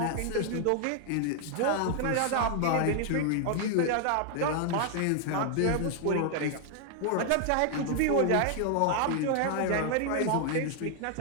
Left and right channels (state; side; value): different; both; correlation 0.00